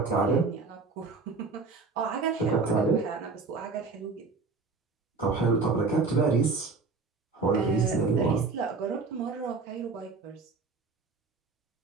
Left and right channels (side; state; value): left; quieter; 4.3 dB